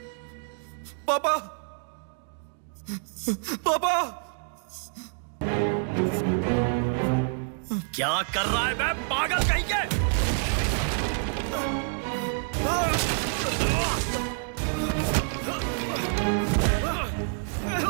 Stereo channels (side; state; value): left; silent; 60 dB below the other